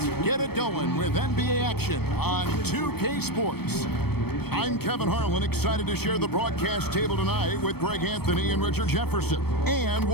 get it going with NBA action on 2K Sports. I'm Kevin Harlan, excited to share the broadcast table tonight with Greg Anthony and Richard Jefferson. And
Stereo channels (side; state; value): right; late; 0.96 ms